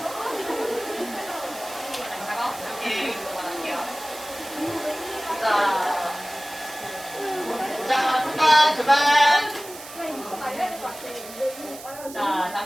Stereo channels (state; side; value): noise; right; hiss, 15 dB below the sound